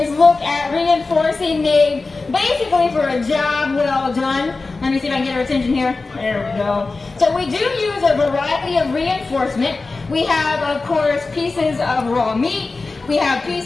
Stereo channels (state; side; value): quieter; right; 3.7 dB